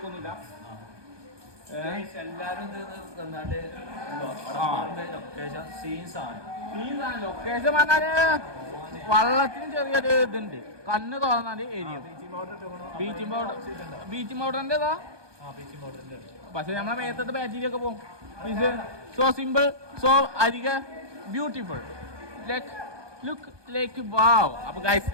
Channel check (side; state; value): left; late; 1.2 ms